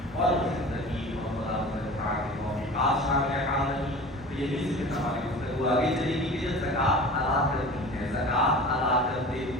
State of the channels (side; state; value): both; normal; correlation 0.39